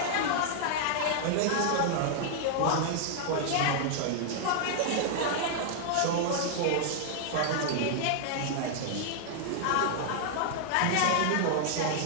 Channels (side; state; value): both; different; correlation -0.01